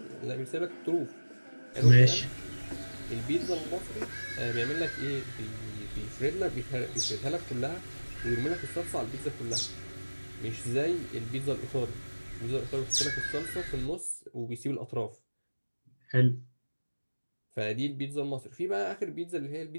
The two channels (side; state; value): both; inverted; correlation -1.00